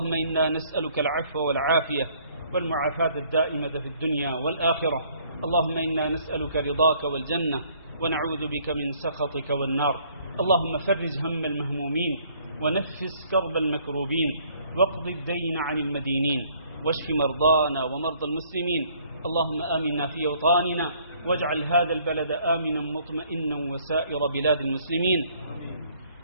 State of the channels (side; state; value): both; inverted; correlation -0.62